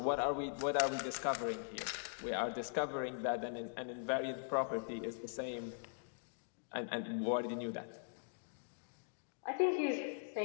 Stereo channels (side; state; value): right; silent; digital silence